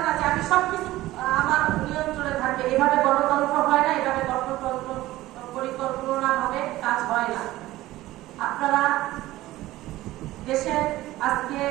না, যে আমি সবকিছু আমার নিয়ন্ত্রণে থাকবে, এভাবে গণতন্ত্র হয় না, এভাবে গণতন্ত্র পরিকল্পনা ভাবে কাজ হয় না। আপনারা দেশের আজকে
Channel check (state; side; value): quieter; left; 16.6 dB